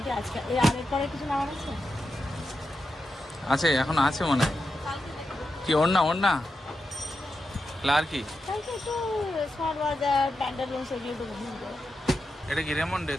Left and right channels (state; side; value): normal; both; correlation 0.88